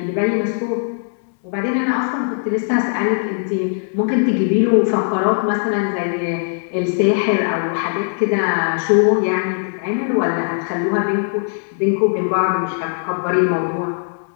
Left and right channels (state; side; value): silent; right; digital silence